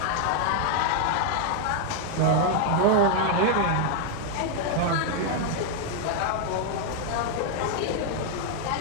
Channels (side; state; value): both; different; correlation 0.00